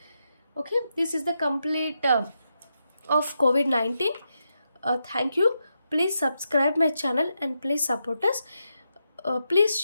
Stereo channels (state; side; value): inverted; both; correlation -0.85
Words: Okay, this is the complete of COVID-19. Thank you. Please subscribe my channel and please support us. Please